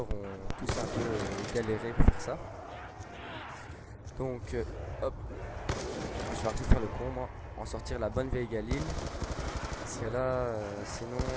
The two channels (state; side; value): identical; both; correlation 1.00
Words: ont tous un peu galéré pour faire ça. Donc hop, je vais arrêter de faire le con moi, en sortir la bonne vieille Galil, parce que là sinon